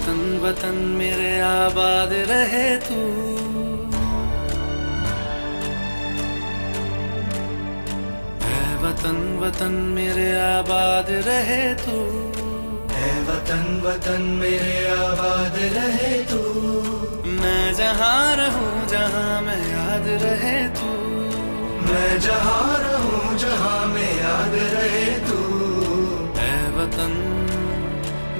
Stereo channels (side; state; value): both; inverted; correlation -1.00